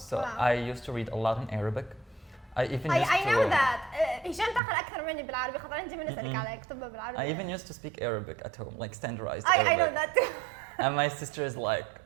so Wow. I used to read a lot in Arabic. I even used I know to, that. هشام تقرأ أكثر مني بالعربي خاطر أنت من نسألك على كتبها بالعربي. I even used to speak Arabic at home, like standardized I Arabic. know that too. And my sister is like,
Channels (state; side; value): drops out; left; at 4.6 s